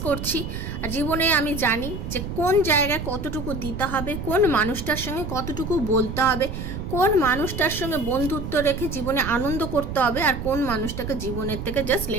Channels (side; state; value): right; noise; rumble, 6 dB below the sound